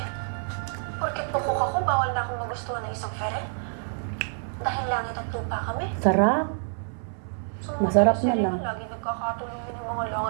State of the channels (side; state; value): left; silent; 60 dB below the other